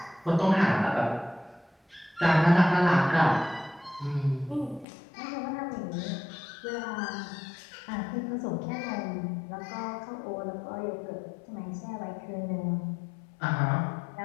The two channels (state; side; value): drops out; right; at 4.9 s